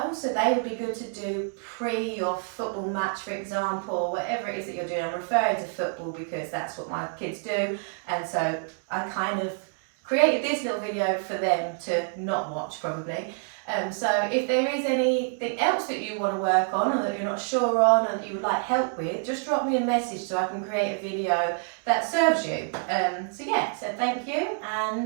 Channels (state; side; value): silent; left; 55 dB below the other